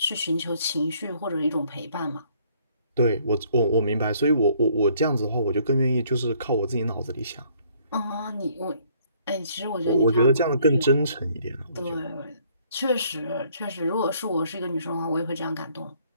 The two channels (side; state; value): both; inverted; correlation -0.63